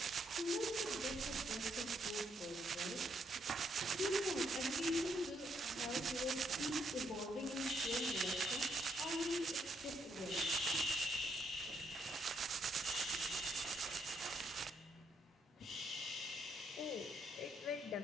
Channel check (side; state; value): both; normal; correlation 0.74